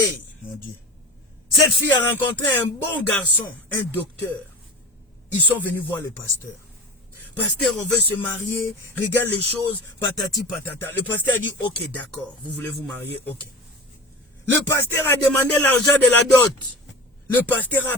mon Dieu. Cette fille a rencontré un bon garçon, un docteur. Ils sont venus voir le pasteur. Pasteur, on veut se marier, regarde les choses, patati patata. Le pasteur a dit, ok, d'accord, vous voulez vous marier, ok. Le pasteur a demandé l'argent de la dot. Le pasteur a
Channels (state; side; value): normal; both; correlation 0.30